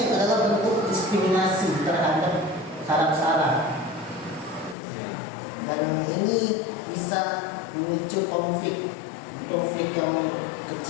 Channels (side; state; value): right; drops out; at 4.8 s